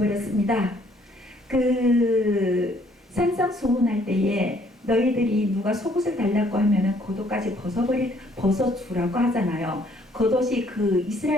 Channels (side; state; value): both; normal; correlation 0.64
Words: 그 산상수훈할 때에 너희들이 누가 속옷을 달라고 하면은 겉옷까지 벗어주라고 하잖아요. 겉옷이 그